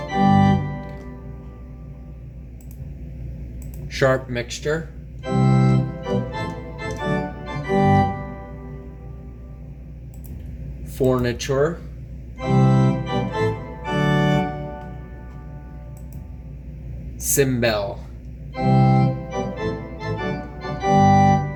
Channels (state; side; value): identical; both; correlation 1.00